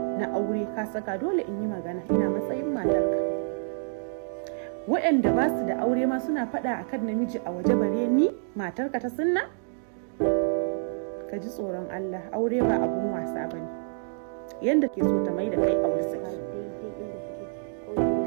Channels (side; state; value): left; silent; digital silence